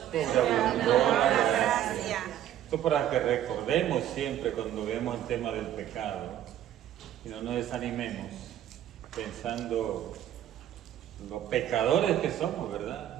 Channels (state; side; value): quieter; left; 11.5 dB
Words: sobreabundó la gracia. Esto para que recordemos siempre cuando vemos el tema del pecado y no nos desanimemos pensando los pecadores que somos, ¿verdad?